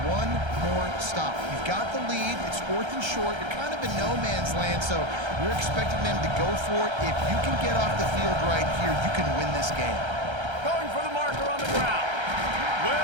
one more stop? You've got the lead. It's 4th and short. You're kind of in no man's land, so you're expecting them to go for it. If you can get off the field right here, you can win this game. Going for the marker on the ground.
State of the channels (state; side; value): late; left; 1.3 ms